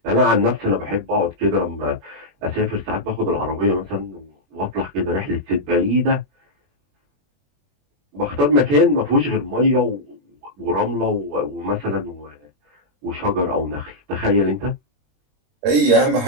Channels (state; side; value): late; left; 21 ms